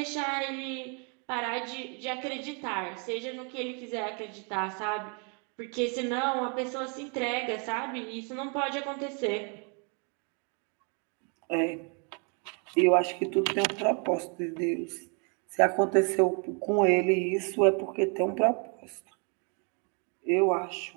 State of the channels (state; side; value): quieter; left; 36.9 dB